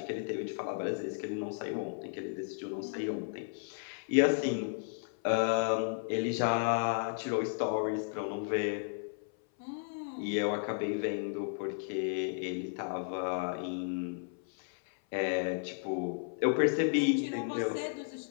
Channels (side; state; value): right; silent; 55 dB below the other